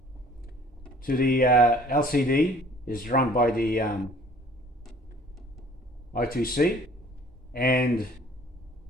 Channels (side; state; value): both; normal; correlation 0.54